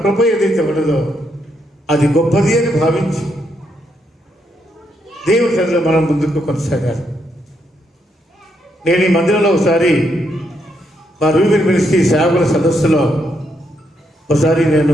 కృప ఏదైతే ఉండదో అది గొప్పది అని భావించి దేవుడి సన్నిధిలో మనం ముందుకు కొనసాగాలి. నేను ఈ మందిరంలో ఒకసారి మా రూబిన్ మినిస్ట్రీ సేవకుల సదస్సులో ఒకసారి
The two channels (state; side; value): normal; both; correlation 0.78